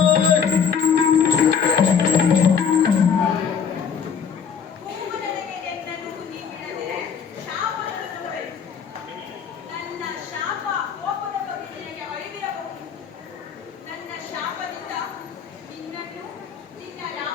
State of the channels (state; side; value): quieter; right; 6.9 dB